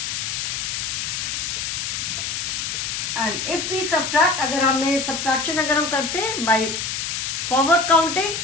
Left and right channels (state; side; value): noise; left; hiss, 2 dB below the sound